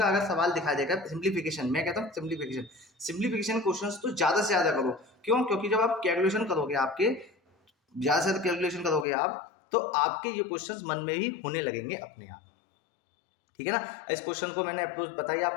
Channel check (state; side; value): drops out; right; at 9.1 s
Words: अगर सवाल दिखा देगा, सिंप्लीफिकेशन, मैं कहता हूँ सिंप्लीफिकेशन क्वेश्चंस तो ज़्यादा से ज़्यादा करो, क्यों, क्योंकि जब आप कैलकुलेशन करोगे, आपके ज़्यादा से ज़्यादा कैलकुलेशन करोगे आप, तो आपके ये क्वेश्चंस मन में ही होने लगेंगे अपने आप, ठीक है ना। इस क्वेश्चन को मैंने अप्रोच बताई